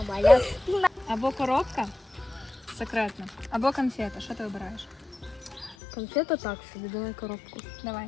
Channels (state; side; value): drops out; right; at 5.8 s